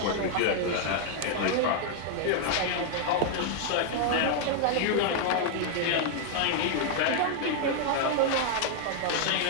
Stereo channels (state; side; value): different; both; correlation 0.00